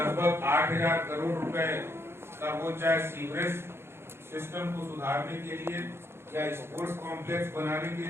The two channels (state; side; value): late; left; 0.12 ms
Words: 8000 करोड़ रुपए का, वो चाहे सीवरेज सिस्टम को सुधारने के लिए, या स्पोर्ट्स कॉम्प्लेक्स बनाने के